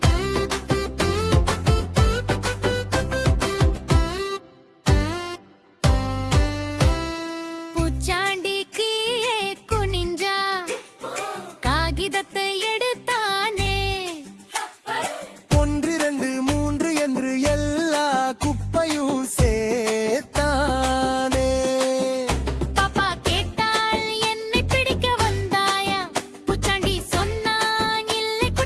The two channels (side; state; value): both; identical; correlation 1.00